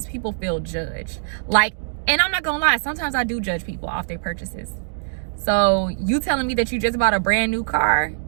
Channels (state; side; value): silent; left; digital silence